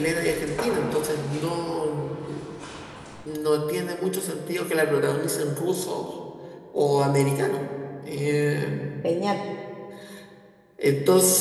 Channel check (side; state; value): both; identical; correlation 1.00